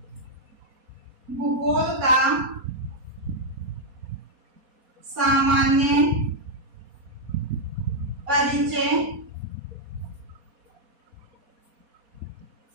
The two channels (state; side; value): late; left; 4.2 ms